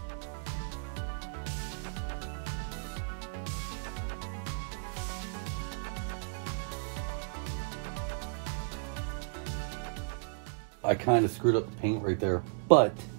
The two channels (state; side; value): silent; left; digital silence